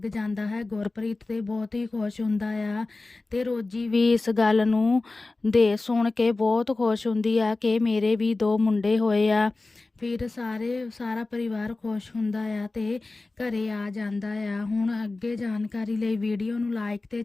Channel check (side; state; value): right; quieter; 3.3 dB